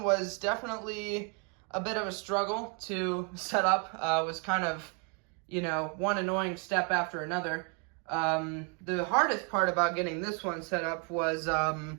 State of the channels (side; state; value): left; quieter; 36.8 dB